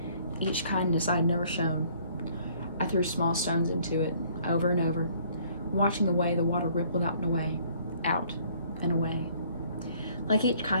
Each kindness I had never shown. I threw small stones into it, over and over, watching the way the water rippled out and away, out and away. Like each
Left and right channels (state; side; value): inverted; both; correlation -0.59